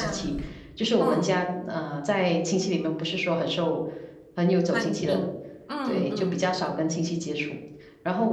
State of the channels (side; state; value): both; identical; correlation 1.00